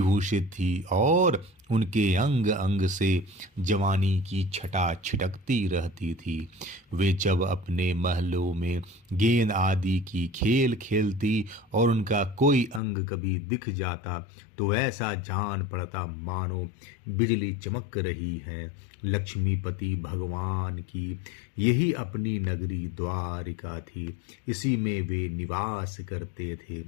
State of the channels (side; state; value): right; drops out; at 12.8 s